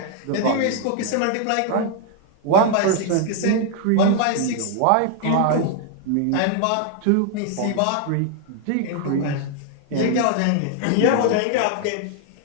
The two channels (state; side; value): different; both; correlation 0.00